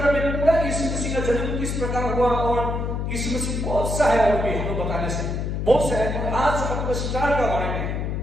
में पूरा यीशु मसीह का जन्म किस प्रकार हुआ, और यीशु मसीह बहुत सा है, और भी हम लोग बताने से बहुत सा है। और आज आपको स्टार का बारे में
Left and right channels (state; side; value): noise; left; hum, 2 dB below the sound